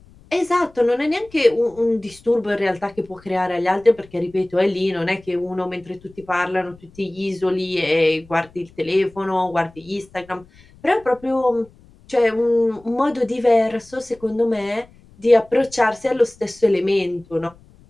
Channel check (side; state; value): left; noise; rumble, 26 dB below the sound